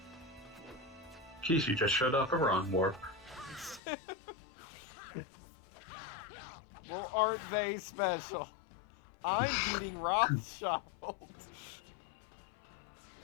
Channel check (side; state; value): right; drops out; at 3.8 s